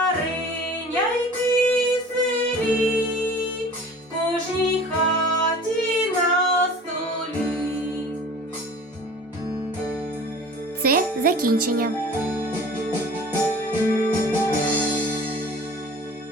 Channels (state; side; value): normal; both; correlation 0.44